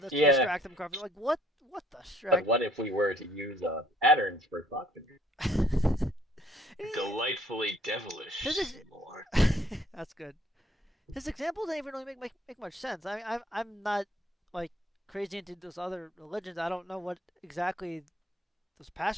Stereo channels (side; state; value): both; normal; correlation 0.62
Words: will distract them. Like what the strike? But what if we were to use patterns for thought control? Delightfully devilish. That's good. His example didn't even really make much sense. I'm not like crazy into those other religions. I don't know what exactly those